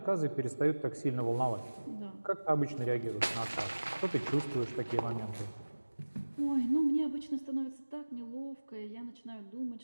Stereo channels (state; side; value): inverted; both; correlation -1.00